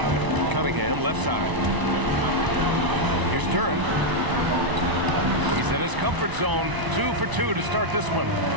Cunningham, left side. Here's Duren. He's in his comfort zone. 2 for 2 to start this one.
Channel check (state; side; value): late; left; 1.0 ms